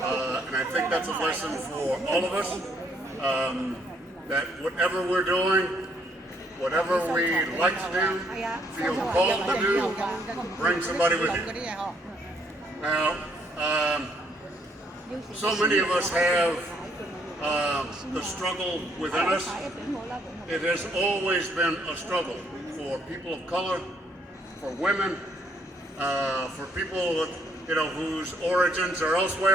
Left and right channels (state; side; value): normal; both; correlation 0.69